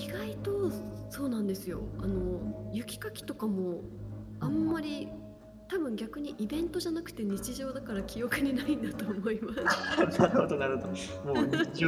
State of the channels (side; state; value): both; identical; correlation 1.00